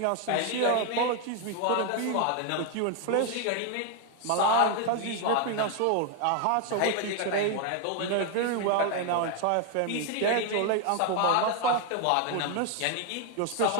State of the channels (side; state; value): both; different; correlation 0.01